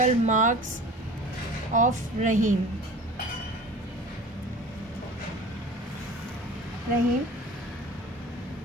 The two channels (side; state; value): both; normal; correlation 0.41